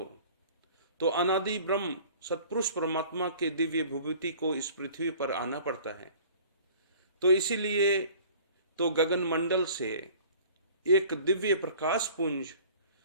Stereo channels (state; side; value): inverted; both; correlation -0.48